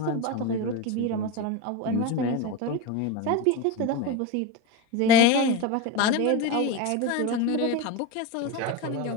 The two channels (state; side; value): different; both; correlation 0.07